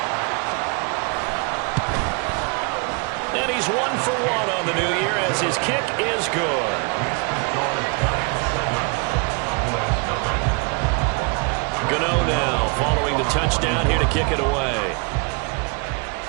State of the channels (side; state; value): left; quieter; 33.4 dB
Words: And he's 1 for 1 on the new year as his kick is good. Gano now following the touchdown here to kick it away.